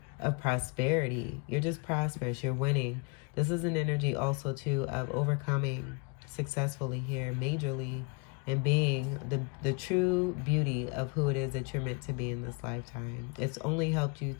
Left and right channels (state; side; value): quieter; right; 33.4 dB